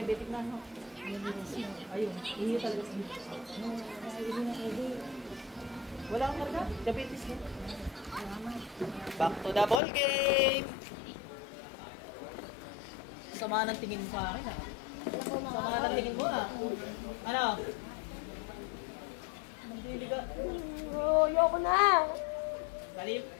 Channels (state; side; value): drops out; right; at 9.8 s